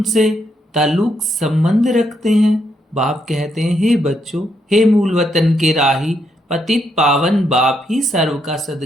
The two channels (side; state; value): both; normal; correlation 0.77